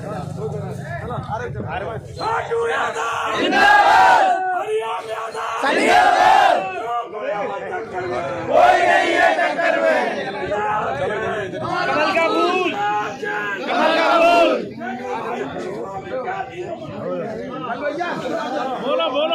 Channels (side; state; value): both; identical; correlation 1.00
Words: कोई नहीं है टक्कर में। कमल का फूल बोलो